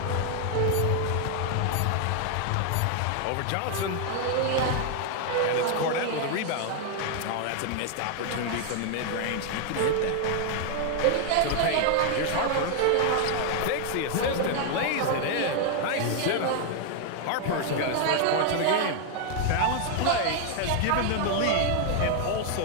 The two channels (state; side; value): different; both; correlation 0.00